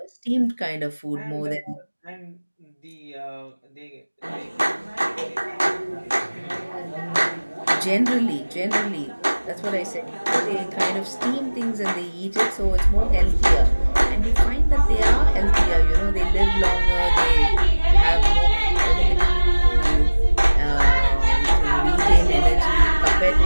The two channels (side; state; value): both; inverted; correlation -1.00